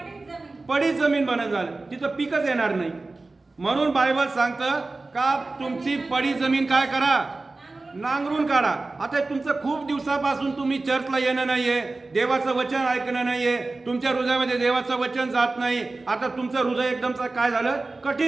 पडीत जमीन बनत झालं, तिथं पीकच येणार नाही. म्हणून बायबल सांगतं का तुमची पडीत जमीन काय करा? नांगरून काढा. आता तुमचं खूप दिवसापासून तुम्ही चर्चला येणं नाहीये, देवाचं वचन ऐकणं नाहीये, तुमच्या हृदयामध्ये देवाचं वचन जात नाही. आता तुमचं हृदय एकदमच काय झालं?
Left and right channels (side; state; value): left; quieter; 3.4 dB